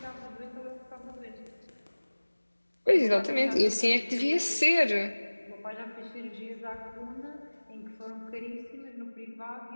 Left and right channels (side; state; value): both; inverted; correlation -1.00